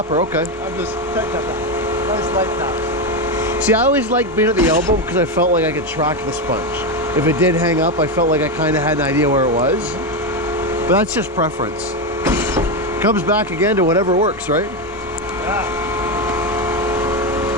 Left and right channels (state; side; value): normal; both; correlation 0.10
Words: Okay. I'm just tight tap. I just like that. See, I always liked being at the elbow because I felt like I could track the sponge. If it did hang up, I felt like I kind of had an idea where it was. But that's just preference. Comes back again to whatever works, right? Yeah.